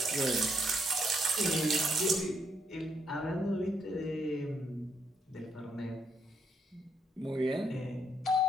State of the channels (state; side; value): normal; both; correlation 0.74